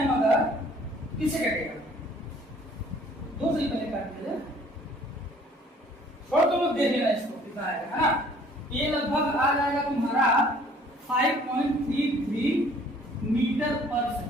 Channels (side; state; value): both; normal; correlation 0.56